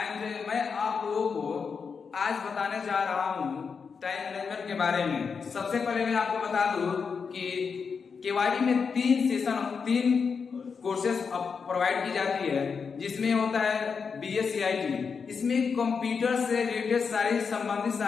मैं आप लोगों को आज बताने जा रहा हूँ time management के बारे में। सबसे पहले मैं आपको बता दूं कि केवाईपी में तीन कोर्सेज प्रोवाइड की जाती है, जिसमें होता है BSCIT। इसमें कंप्यूटर से रिलेटेड सारी संबंधित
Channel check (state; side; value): quieter; right; 5.7 dB